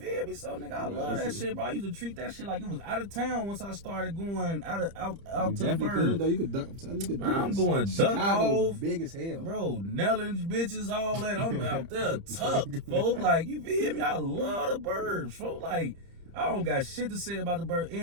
me? So, nigga, I love that shit, bro. I used to treat that shit like it was out of town once I started going out to the bird. Though. You could duck. I'm going duck Chicago, off. big as hell. Bro, Nellens, bitches, all that. I'm out there tucked, folks. Like, you feel me? I love the burbs, folks. Like, I don't got shit to say about the burbs.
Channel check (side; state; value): left; late; 30 ms